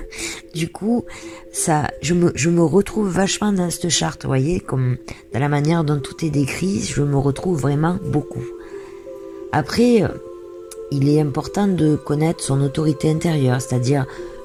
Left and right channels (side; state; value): both; identical; correlation 1.00